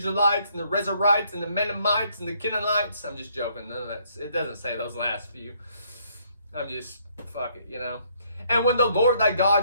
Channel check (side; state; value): both; inverted; correlation -0.68